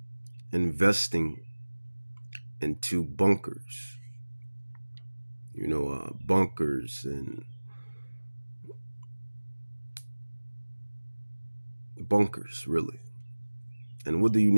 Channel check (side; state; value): both; inverted; correlation -1.00